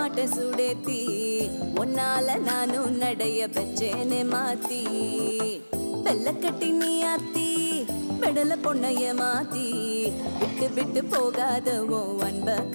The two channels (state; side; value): inverted; both; correlation -1.00